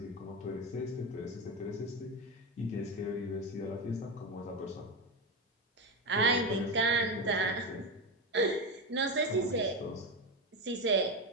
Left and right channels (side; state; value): both; normal; correlation 0.16